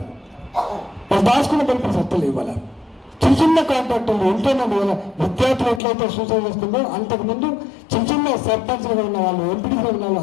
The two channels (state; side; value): drops out; right; at 5.8 s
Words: ఇవాళ చిన్న కాంట్రాక్టర్లు ఎంతోమంది విద్యార్థులు ఎట్లయితే సూసైడ్ చేస్తుందో అంతకుముందు చిన్న సర్పంచ్లుగా ఉన్న వాళ్ళు, ఎంపీడీగా ఉన్న వాళ్ళు